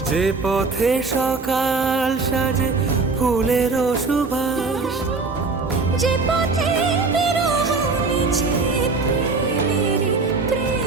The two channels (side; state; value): left; quieter; 4.0 dB